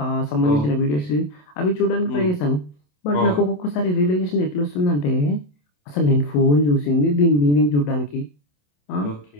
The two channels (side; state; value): right; late; 27 ms